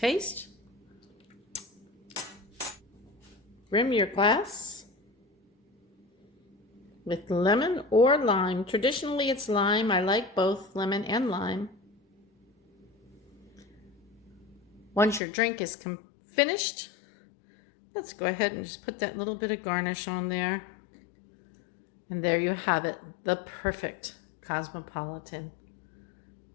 Rim your glass with lemon or lime. Traditionally it's lime. I like both lemon and lime. Once your drink is finished, let's go ahead and just put that little bit of garnish on there. And there you have it, the perfect Cosmopolitan.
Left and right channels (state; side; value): drops out; right; at 15.2 s